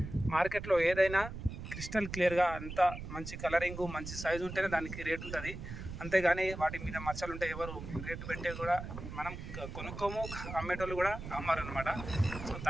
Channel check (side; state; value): right; noise; rumble, 9 dB below the sound